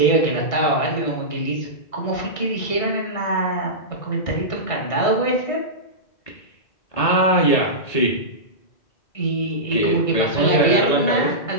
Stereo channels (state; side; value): late; right; 1.6 ms